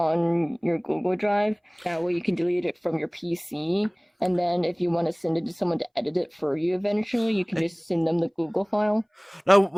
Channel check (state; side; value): identical; both; correlation 1.00